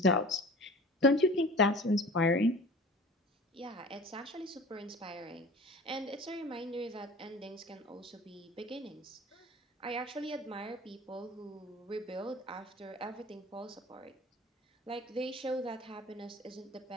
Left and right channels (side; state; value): both; normal; correlation 0.41